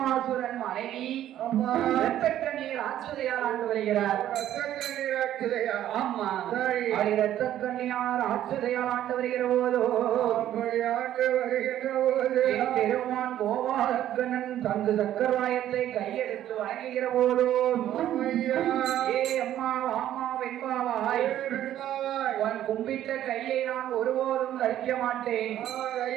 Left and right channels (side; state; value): left; quieter; 12.1 dB